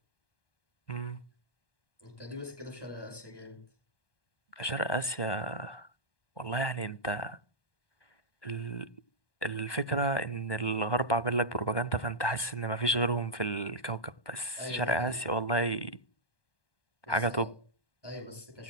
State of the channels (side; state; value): right; late; 1.2 ms